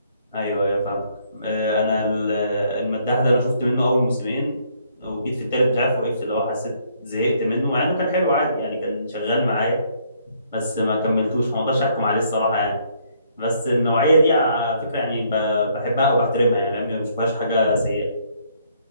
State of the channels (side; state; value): both; inverted; correlation -0.68